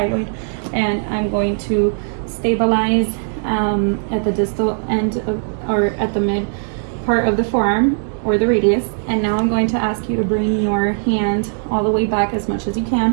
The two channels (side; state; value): left; silent; 67 dB below the other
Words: and I'm going to stabilize at the distal end of, or at the mid part of the forearm or the radius. And now I'm going to ask you to bring your hand all the way back as much as you